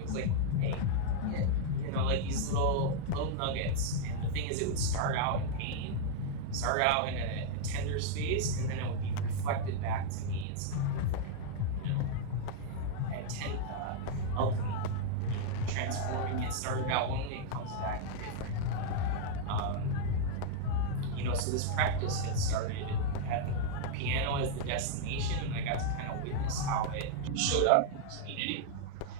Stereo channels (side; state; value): both; different; correlation -0.01